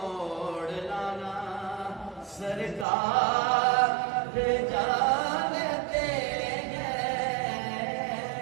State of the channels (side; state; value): left; drops out; at 2.9 s